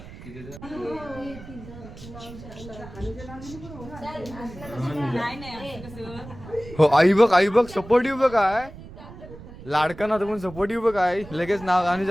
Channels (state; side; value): noise; right; rumble, 15 dB below the sound